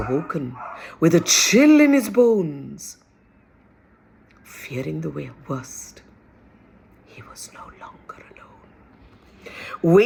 with a chill in his bones. Fearing the worst, he was no longer alone.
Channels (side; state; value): both; identical; correlation 1.00